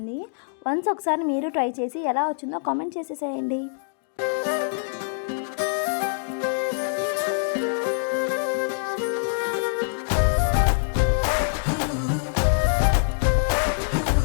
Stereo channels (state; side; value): silent; right; digital silence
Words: వన్స్ ఒకసారి మీరు ట్రై చేసి ఎలా వచ్చిందో కామెంట్ చేసేసేయండి.